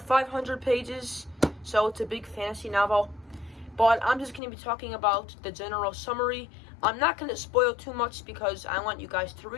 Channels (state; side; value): drops out; right; at 4.4 s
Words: 500 pages, so it's a big fantasy novel. But I'm just going to be talking about the general summary. I'm not going to spoil too much because I want you guys to